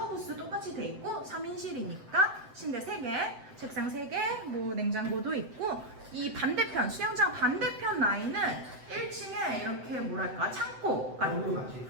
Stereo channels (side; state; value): left; late; 7.8 ms